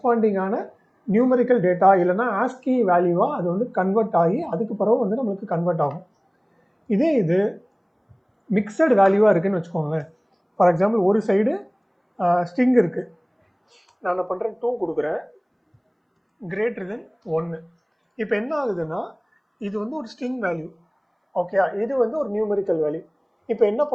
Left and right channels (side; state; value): both; identical; correlation 1.00